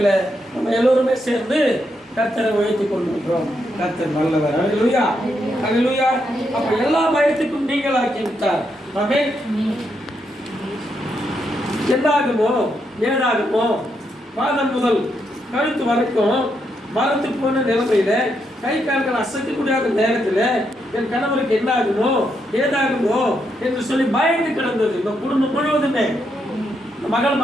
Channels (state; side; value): normal; both; correlation 0.80